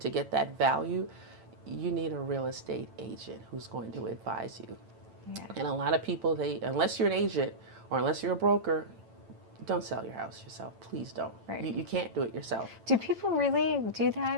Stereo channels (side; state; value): left; late; 9.0 ms